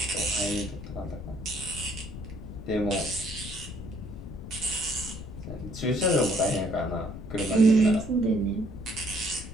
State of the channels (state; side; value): noise; left; rumble, 10 dB below the sound